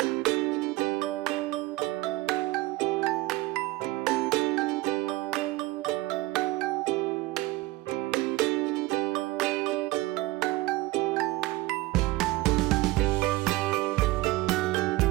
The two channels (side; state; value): left; quieter; 19.7 dB